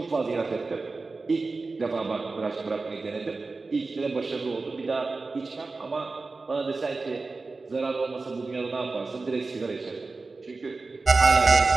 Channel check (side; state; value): left; quieter; 3.8 dB